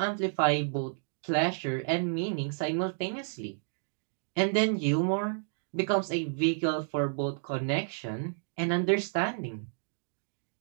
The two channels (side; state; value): left; silent; digital silence